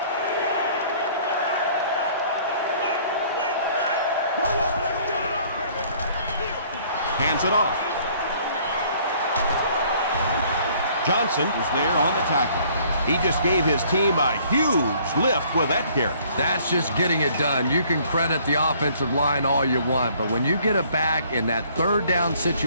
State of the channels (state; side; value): inverted; both; correlation -0.58